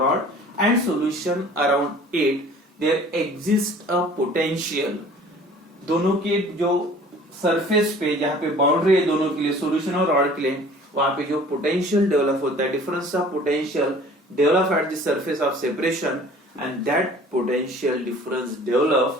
and solution around it there exists a potential। दोनों के जो surface पे, जहां पे बाउंड्री है दोनों के लिए, solution और rod के लिए, वहां पे जो पोटेंशियल डेवलप होता है, difference of potential develop at the surface of separation, and that potential difference develop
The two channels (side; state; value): both; normal; correlation 0.49